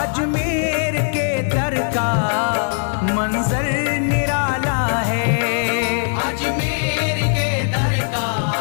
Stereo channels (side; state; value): right; silent; digital silence